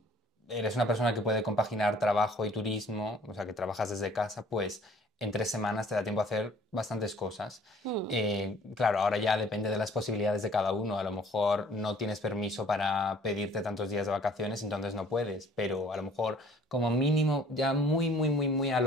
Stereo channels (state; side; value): normal; both; correlation 0.55